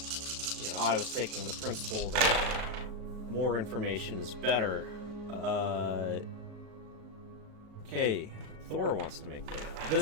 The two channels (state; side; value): late; left; 37 ms